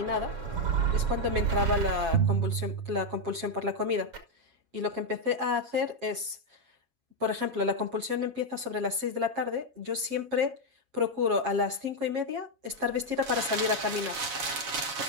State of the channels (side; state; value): left; late; 7.2 ms